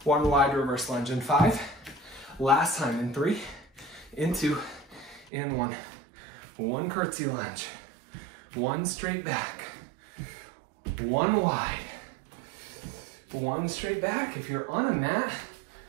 1 wide reverse lunge in 5. Last time in 3, in 2, in 1. 1 curtsy lunge, 1 straight back, 1 wide, 1 straight back. If you're on a mat,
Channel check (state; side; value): drops out; left; at 5.3 s